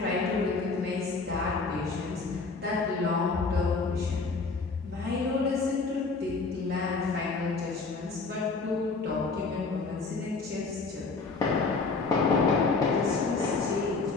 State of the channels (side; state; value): right; quieter; 4.1 dB